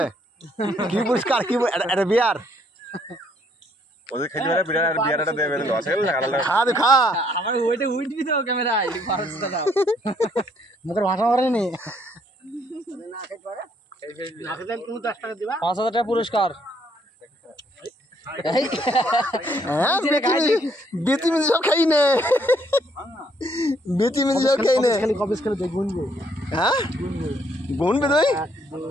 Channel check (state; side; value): normal; both; correlation 0.67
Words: কি পুরস্কার? কি একটা বিয়ার? ওদের খাইতে পারে বিয়ারটা দেবে, লস হয়ে গেল। খা তো খা। আমার ওইটা উঠবি তো ক্যামেরায়, মুখের ভাষা করেনি। 5,000 টাকা পুরস্কার। বেতি মিনি সব খাই নে, বেতি মিনি সব খাই নে। হ্যাঁ গুনবে তুই?